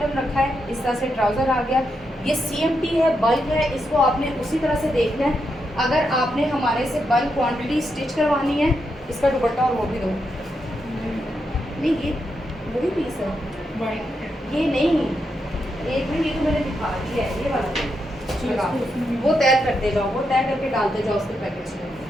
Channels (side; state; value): both; normal; correlation 0.83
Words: रखा है, इस तरह से ट्राउज़र आ गया। ये CMT है, बल्क है, इसको आपने उसी तरह से देखना है। अगर आपने हमारे से बल्क क्वांटिटी स्टिच करवानी है, इसका दुपट्टा और वो भी दो। नहीं ये वही पीस है, ये नहीं, एक मिनट, ये तो मैंने दिखा दिया है, ये वाला वो तय करते जाओ, वो तय करके डालते जाओ उसके पैकेज में।